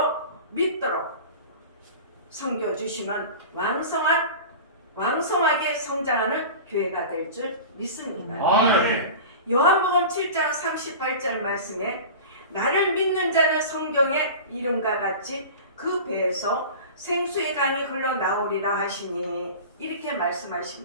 믿도록 섬겨주시면 왕성하게 성장하는 교회가 될 줄 믿습니다. 아멘. 요한복음 7장 38절 말씀에 나를 믿는 자는 성경의 이름과 같이 그 배에서 생수의 강이 흘러나오리라 하시니 이렇게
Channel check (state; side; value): inverted; both; correlation -0.34